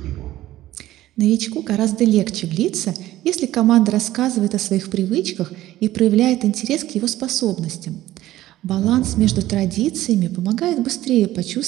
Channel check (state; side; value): quieter; left; 15.0 dB